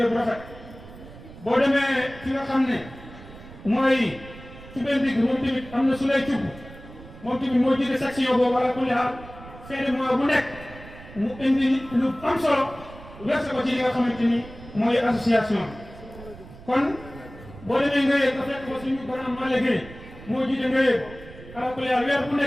bu rafet boo demee fi nga xam ne mooy ci benn digg moom tamit am na su lay cubb moom tamit moo jiite section boobu ala kulli xaal fin de mois bu nekk mu indi lu am solo verse ko ci li nga xamante ni mooy association kon boo demee nga yëg nga fekk ko suñu grand Malick Gueye moo jiite nga yëg ala kulli xaal weer bu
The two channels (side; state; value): right; noise; rumble, 17 dB below the sound